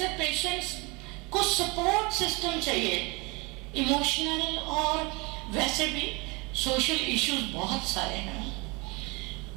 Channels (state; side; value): quieter; left; 27.5 dB